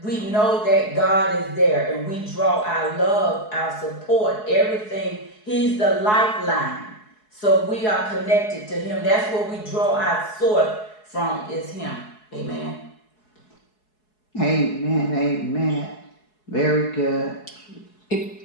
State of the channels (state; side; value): late; right; 4.7 ms